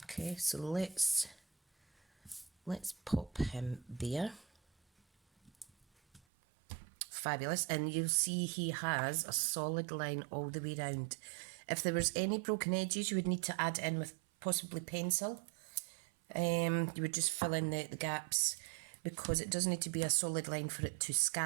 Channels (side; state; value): left; drops out; at 6.2 s